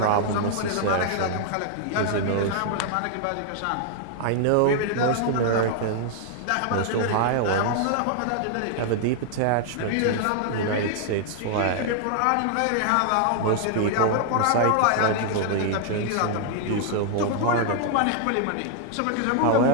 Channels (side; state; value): both; different; correlation 0.00